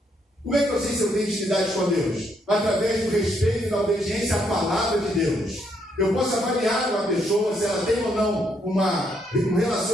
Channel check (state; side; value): normal; both; correlation 0.73